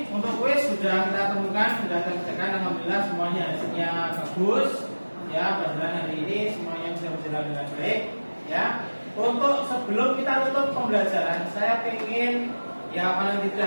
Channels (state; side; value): inverted; both; correlation -1.00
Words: untuk kuis sudah kita temukan, sudah kita kerjakan, alhamdulillah semuanya hasilnya bagus. Ya, pelajaran hari ini semuanya bisa berjalan dengan baik. Ya, untuk sebelum kita tutup pembelajaran, saya ingin ya paling